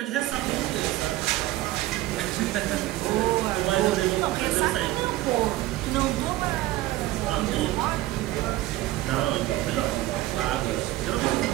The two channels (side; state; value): left; quieter; 16.7 dB